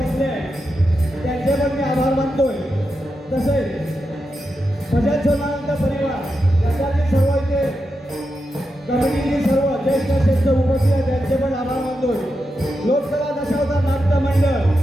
बसले आहेत त्यांचे पण मी आभार मानतोय. तसेच भजन सोनानंद परिवार याच्यातील सर्व इथे कमिटीतील सर्व ज्येष्ठ श्रेष्ठ उपस्थित आहेत त्यांचे पण आभार मानतोय. लोकसभा दशावतार नाट्य मंडळ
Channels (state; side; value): normal; both; correlation 0.87